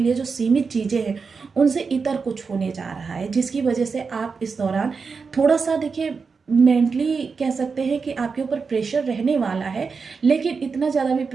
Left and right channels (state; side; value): quieter; left; 5.1 dB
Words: जो सीमित चीज़ें हैं, उनसे इतर कुछ होने जा रहा है, जिसकी वजह से आप इस दौरान थोड़ा सा देखिए मेंटली कह सकते हैं कि आपके ऊपर प्रेशर रहने वाला है, लेकिन इतना ज़्यादा भी